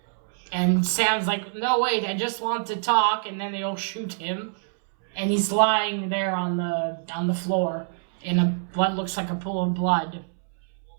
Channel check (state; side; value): silent; left; 62 dB below the other